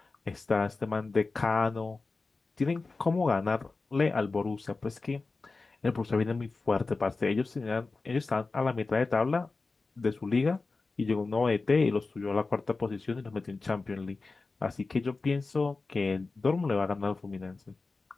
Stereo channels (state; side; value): quieter; right; 3.8 dB